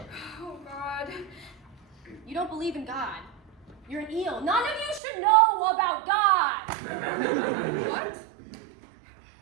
Oh, God. You don't believe in God. You're an eel. None of you should know about God. What?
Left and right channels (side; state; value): left; drops out; at 5.0 s